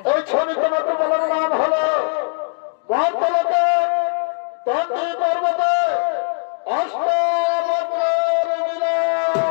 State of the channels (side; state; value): right; silent; digital silence